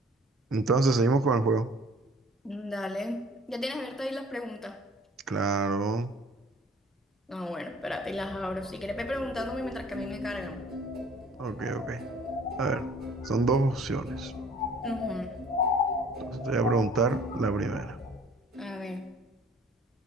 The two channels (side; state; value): both; normal; correlation 0.53